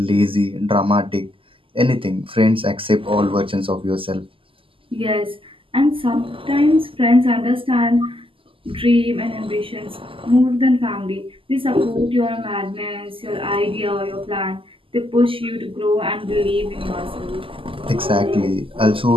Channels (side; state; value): left; late; 0.25 ms